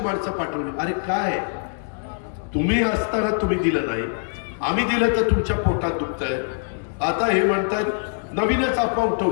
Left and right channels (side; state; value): right; silent; digital silence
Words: माणसं पाठवली. अरे काय तुम्ही असताना तुम्ही दिलं नाही, आम्ही दिलं तर तुमच्या पोटात दुखतंय. आता हे म्हणतात नवीनच अफवा